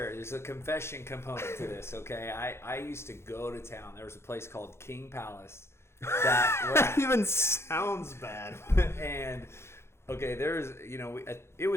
There's a confession component to this, okay? I used to go to town. There was a place called King Palace. That even sounds bad. And, okay, it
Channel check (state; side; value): late; right; 0.12 ms